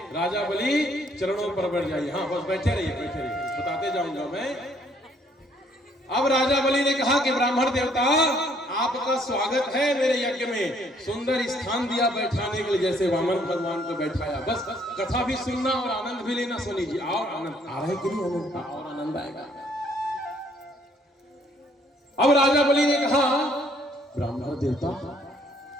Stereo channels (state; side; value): normal; both; correlation 0.65